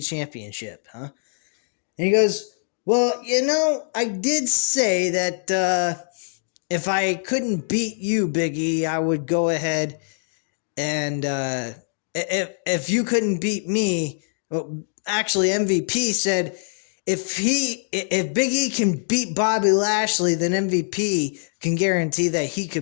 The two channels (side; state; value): right; silent; digital silence